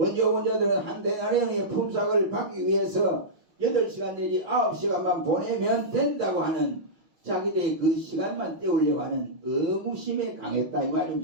온 자들은 한 데나리온의 품삯을 받기 위해서 8시간 내지 9시간만 보내면 된다고 하는 자기들의 그 시간만 때우려고 하는 의무심에 강했다 이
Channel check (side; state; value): left; late; 5.9 ms